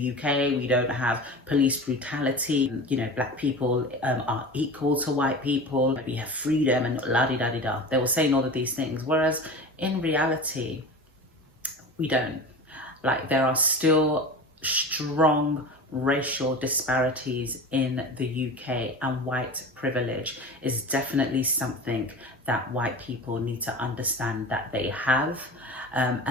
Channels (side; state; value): both; normal; correlation 0.32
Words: UK. We don't have police brutality. Black people are equal to white people. We have freedom and la-di-da-di-da. They were saying all of these things, whereas in reality, we don't. Like, there are still strong racial disparities in the UK, and white privilege is definitely something that white people need to understand that they have,